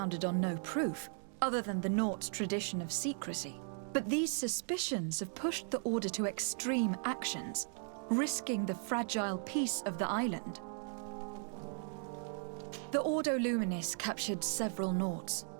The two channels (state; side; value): silent; left; 53 dB below the other